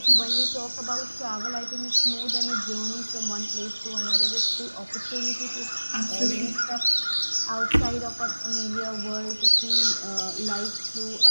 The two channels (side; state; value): both; inverted; correlation -1.00